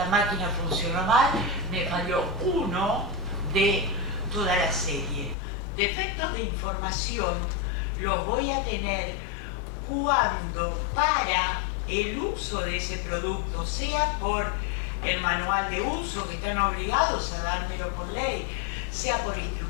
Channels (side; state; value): right; drops out; at 5.4 s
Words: máquina funcionó mal, me falló uno de toda la serie. Defectos de información los voy a tener cuando para el uso de ese producto, sea por el manual de uso, que están obligados a dármelo por ley, sea por